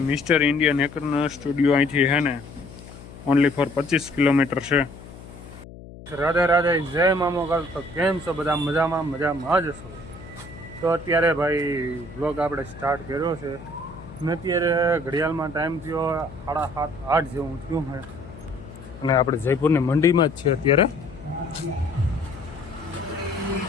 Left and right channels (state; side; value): noise; left; hum, 16 dB below the sound